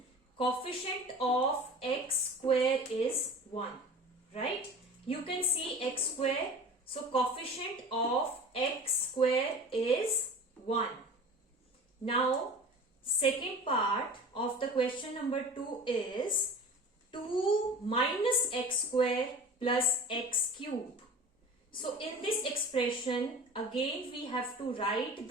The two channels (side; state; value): both; normal; correlation 0.39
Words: coefficient of x square is 1, right? You can see x square. So coefficient of x square is 1. Now second part of the question number 2 is 2 minus x square plus x cube. So in this expression again we have to write